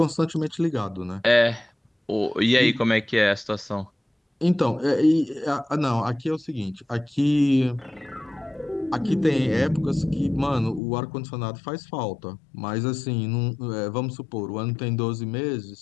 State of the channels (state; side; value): drops out; right; at 10.8 s